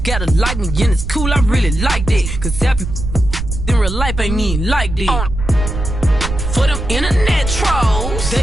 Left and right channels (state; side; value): noise; right; rumble, 5 dB below the sound